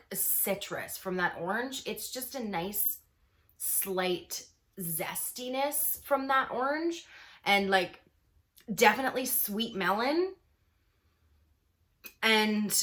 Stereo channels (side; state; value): both; identical; correlation 1.00